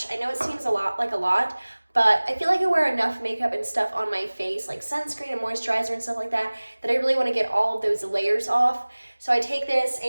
I know it seems a lot, but I feel like I wear enough makeup and stuff on my face, like sunscreen and moisturizer and stuff like that, that I really want to get all of those layers off. So I take this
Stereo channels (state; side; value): inverted; both; correlation -1.00